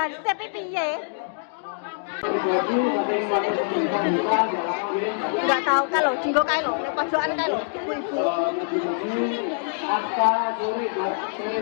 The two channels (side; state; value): right; silent; digital silence